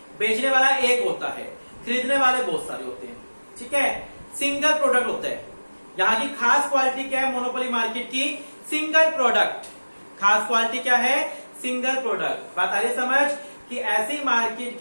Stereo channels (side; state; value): both; inverted; correlation -1.00